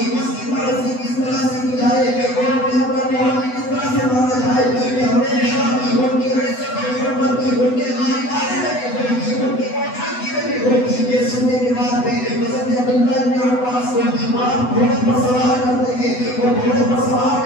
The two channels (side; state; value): right; late; 8.0 ms